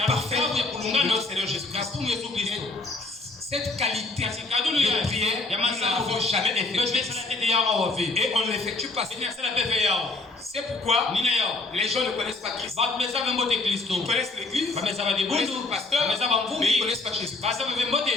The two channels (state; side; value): quieter; right; 3.1 dB